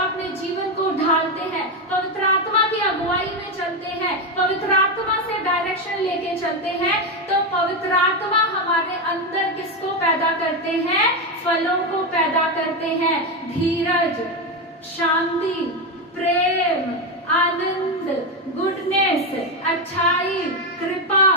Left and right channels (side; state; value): both; normal; correlation 0.10